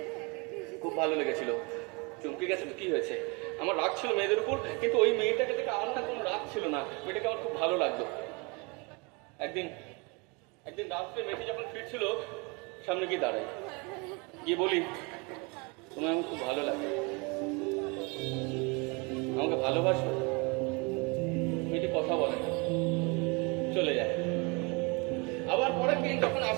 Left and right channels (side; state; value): left; quieter; 29.7 dB